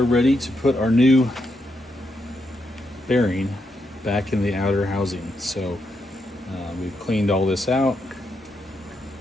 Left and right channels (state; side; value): normal; both; correlation 0.81